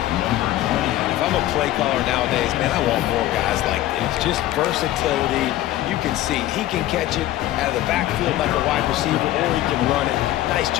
If I'm a play caller nowadays, man, I want more guys like this. Just versatility. You can see he can catch it out of the backfield like a wide receiver, or he can run it. Nice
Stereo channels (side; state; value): right; quieter; 14.7 dB